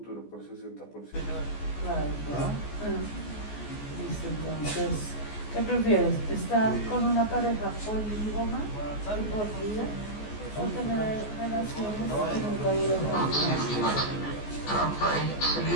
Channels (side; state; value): right; late; 14 ms